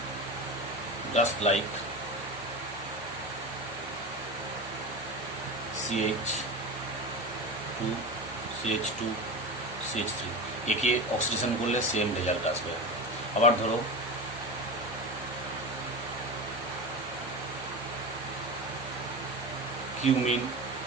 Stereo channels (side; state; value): both; normal; correlation 0.25